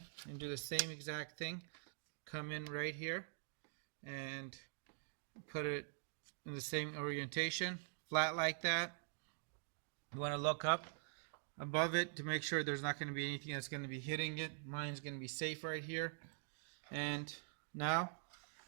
and do the same exact thing. Come in right here and put it in the same orientation, flat like that. You want to look up above it to make sure there's not going to be anything that's going to be hitting it. Mine's going to be safe right here. And now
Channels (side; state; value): left; silent; digital silence